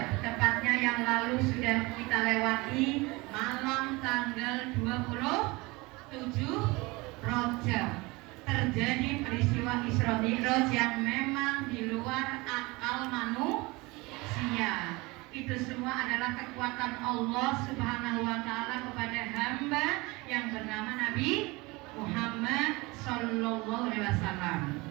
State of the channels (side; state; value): left; quieter; 23.8 dB